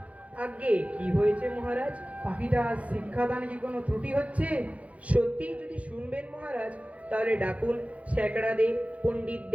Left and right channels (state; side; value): late; left; 0.066 ms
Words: আগে কি হয়েছে মহারাজ? পাখিটা শিক্ষাদানে কি কোনো ত্রুটি হচ্ছে? সত্যি যদি শুনবেন মহারাজ, তাহলে ডাকুন স্যাকড়াদের,